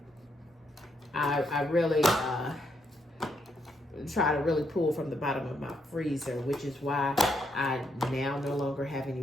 I really try to really pull from the bottom of my freezer, which is why I now no longer have any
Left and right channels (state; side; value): normal; both; correlation 0.77